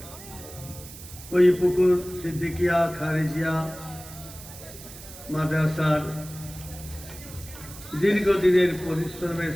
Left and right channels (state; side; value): noise; right; hiss, 15 dB below the sound